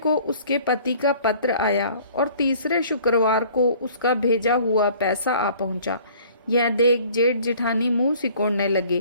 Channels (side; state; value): both; inverted; correlation -0.52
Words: उसके पति का पत्र आया और तीसरे शुक्रवार को उसका भेजा हुआ पैसा आ पहुंचा। यह देख जेठ जेठानी मुंह सिकोड़ने